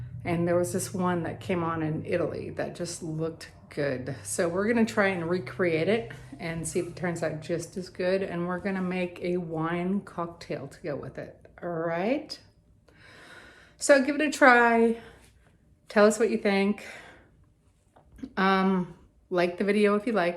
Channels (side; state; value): both; identical; correlation 1.00